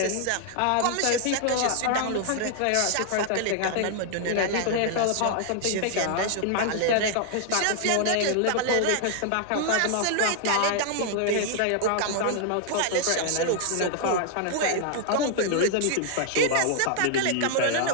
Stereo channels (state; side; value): different; both; correlation 0.00